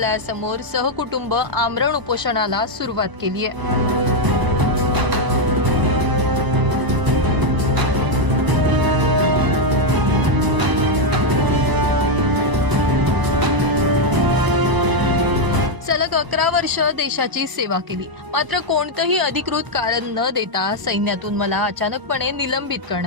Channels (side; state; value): left; late; 1.0 ms